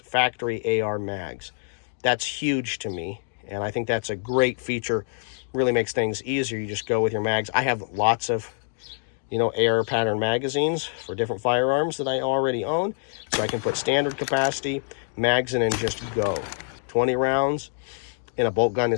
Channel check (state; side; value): silent; right; digital silence